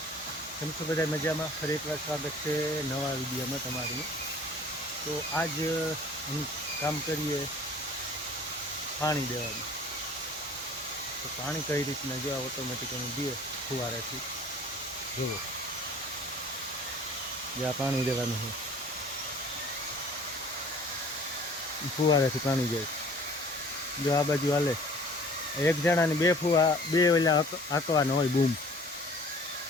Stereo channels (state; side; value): normal; both; correlation 0.50